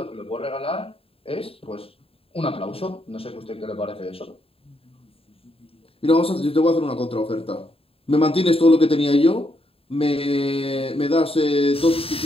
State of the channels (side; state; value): right; late; 0.27 ms